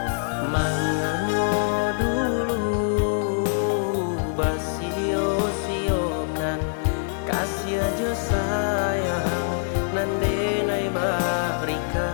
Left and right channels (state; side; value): silent; right; digital silence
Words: manganyo dulu basio-siokan kasih aja sayang nandenai barikan